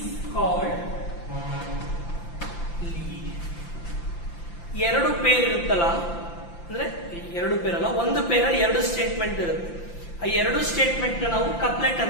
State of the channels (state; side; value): late; right; 5.8 ms